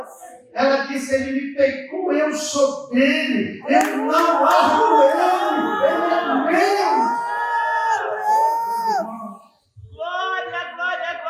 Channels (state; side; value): identical; both; correlation 1.00